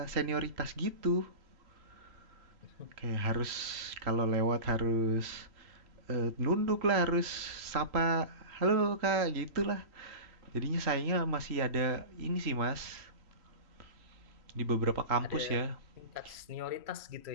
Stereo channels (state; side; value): late; left; 3.1 ms